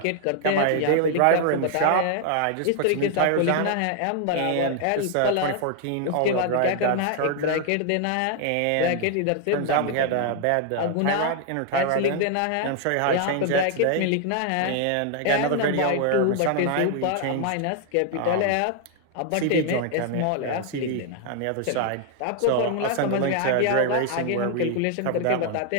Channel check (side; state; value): both; different; correlation 0.00